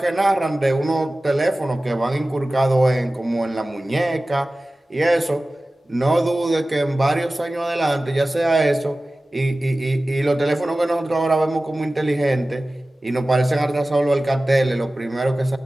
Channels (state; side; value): normal; both; correlation 0.97